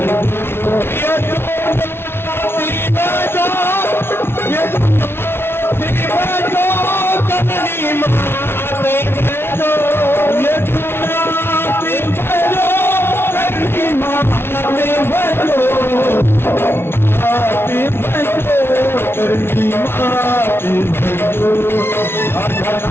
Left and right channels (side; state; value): right; late; 0.12 ms